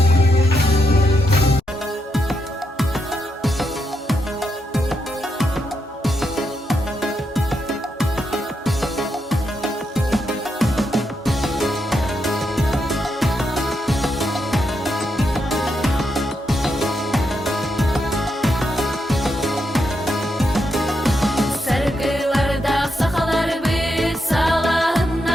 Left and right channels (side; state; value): both; normal; correlation 0.82